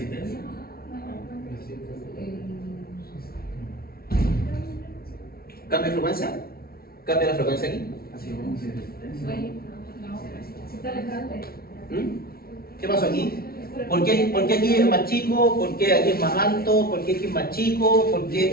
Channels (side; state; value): right; late; 0.44 ms